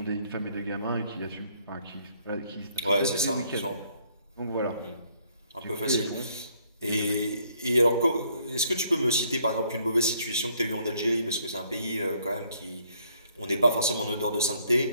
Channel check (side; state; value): both; inverted; correlation -0.67